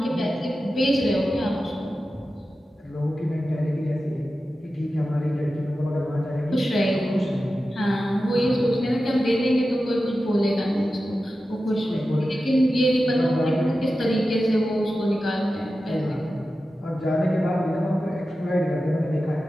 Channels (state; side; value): normal; both; correlation 0.93